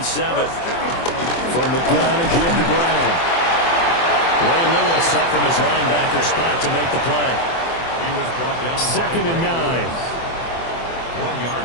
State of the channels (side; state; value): right; late; 24 ms